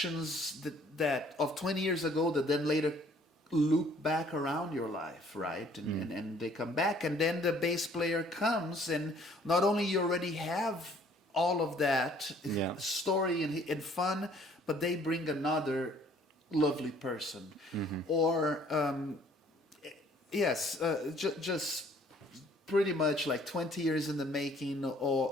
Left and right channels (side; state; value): both; normal; correlation 0.59